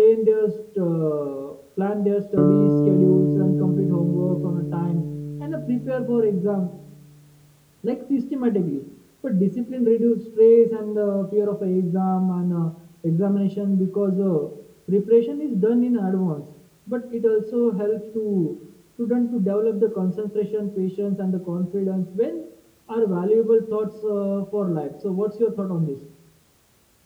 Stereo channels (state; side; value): identical; both; correlation 1.00